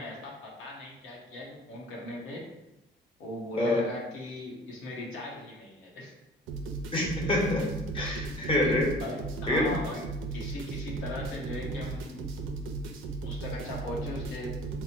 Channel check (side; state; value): both; normal; correlation 0.46